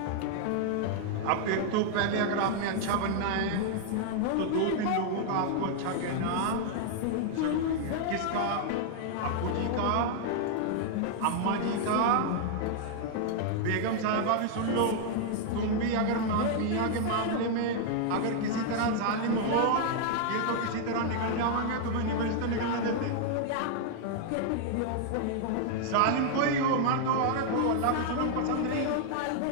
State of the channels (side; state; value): both; different; correlation -0.01